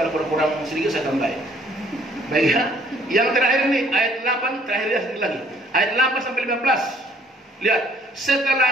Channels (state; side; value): normal; both; correlation 0.60